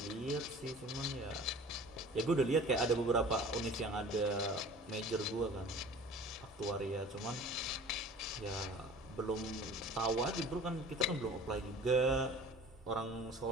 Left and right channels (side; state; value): both; normal; correlation 0.44